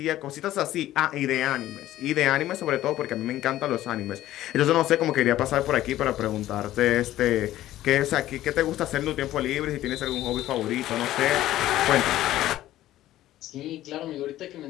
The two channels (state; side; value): quieter; right; 14.2 dB